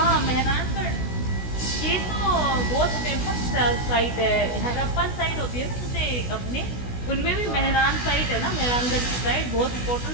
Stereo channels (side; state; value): right; late; 16 ms